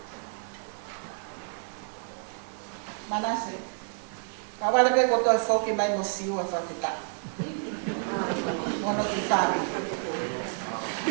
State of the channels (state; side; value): silent; left; 56 dB below the other